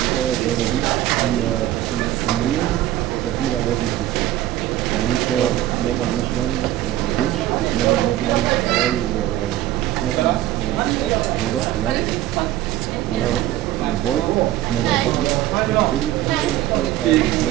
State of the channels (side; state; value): left; quieter; 14.1 dB